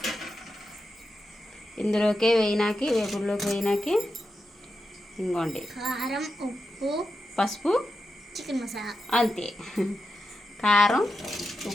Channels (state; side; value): normal; both; correlation 0.89